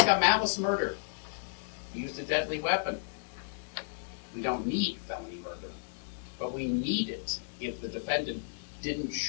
malice murder. He used a deadly weapon. We don't need felony murder, but we need it if the defendant didn't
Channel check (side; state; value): right; silent; 56 dB below the other